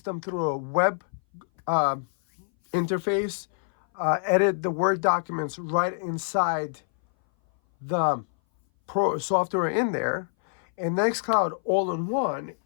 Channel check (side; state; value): right; silent; 59 dB below the other